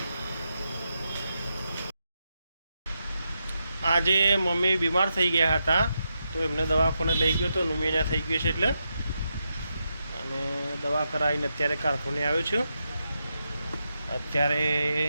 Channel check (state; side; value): inverted; both; correlation -0.85